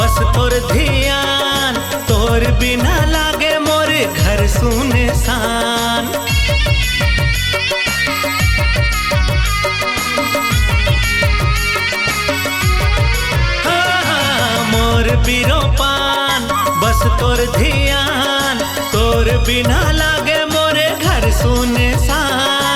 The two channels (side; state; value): both; identical; correlation 1.00